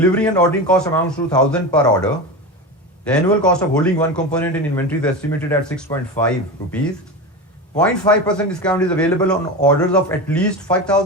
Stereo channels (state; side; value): normal; both; correlation 0.24